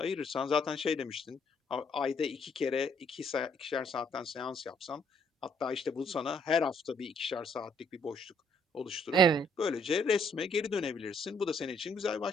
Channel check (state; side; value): normal; both; correlation 0.67